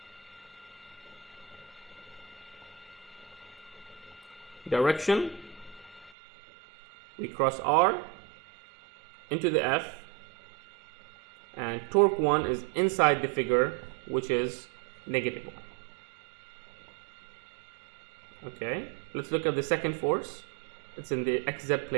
direction, we cross R into the F, and torque 1 is inside the figure, which is negative 1. Okay, let's look at the second force. It's in the XZ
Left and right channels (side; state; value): left; drops out; at 6.1 s